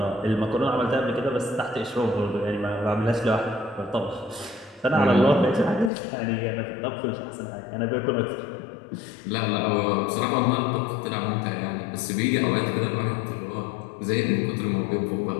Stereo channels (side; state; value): right; drops out; at 5.9 s